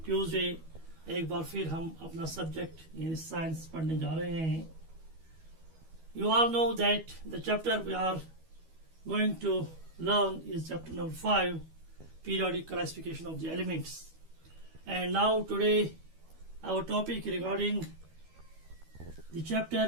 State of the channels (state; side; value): late; left; 12 ms